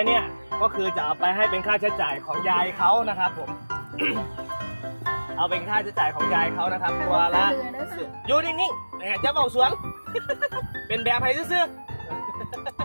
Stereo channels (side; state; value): both; inverted; correlation -1.00